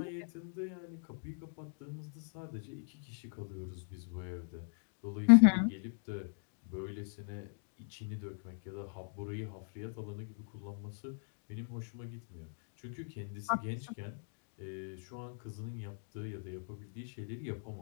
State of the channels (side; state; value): right; silent; digital silence